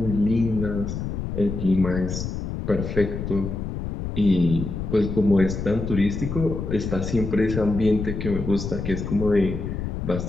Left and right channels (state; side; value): noise; left; rumble, 5 dB below the sound